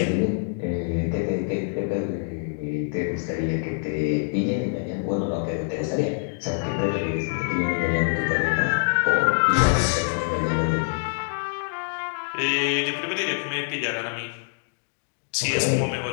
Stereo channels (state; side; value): silent; right; digital silence